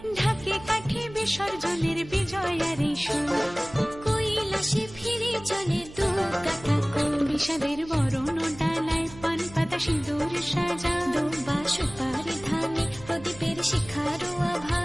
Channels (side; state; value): right; noise; hum, 18 dB below the sound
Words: ঢাকে কাঠি বিসর্জনের বিজয়ার এই সুর। কৈলাসে ফিরে চলে দু কাঠা কোল, বিষাদের বরণ ডালায় পান পাতা সিঁদুর সাজা। দুবা সুপারি ধানে প্রদীপের শিখারো আভা।